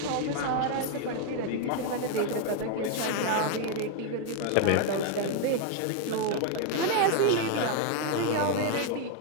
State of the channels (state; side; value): different; both; correlation 0.01